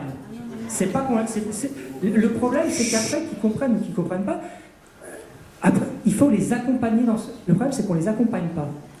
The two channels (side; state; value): both; identical; correlation 1.00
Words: Le problème, c'est qu'après, qu'ils comprennent ou qu'ils ne comprennent pas, après, il faut les accompagner Le problème, c'est qu'on ne les accompagne pas.